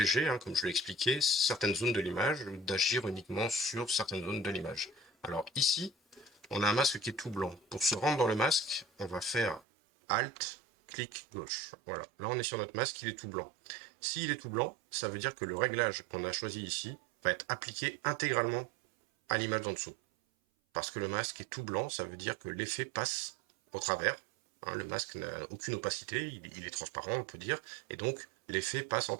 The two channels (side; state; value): left; drops out; at 9.6 s